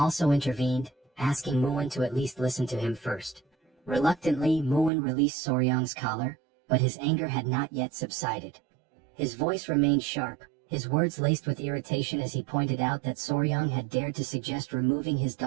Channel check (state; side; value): drops out; left; at 4.9 s